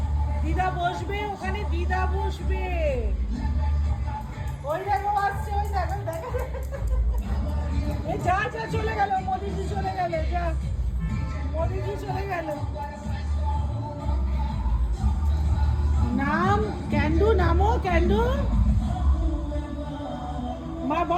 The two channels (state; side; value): identical; both; correlation 1.00